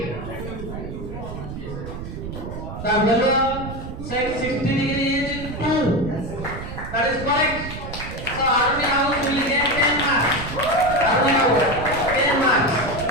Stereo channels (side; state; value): right; noise; rumble, 9 dB below the sound